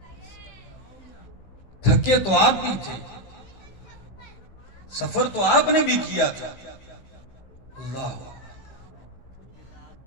تھکے تو آپ بھی تھے، سفر تو آپ نے بھی کیا تھا۔ اللہ،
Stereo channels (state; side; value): late; right; 16 ms